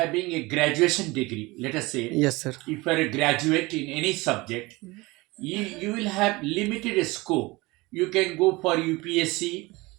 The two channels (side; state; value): left; quieter; 22.6 dB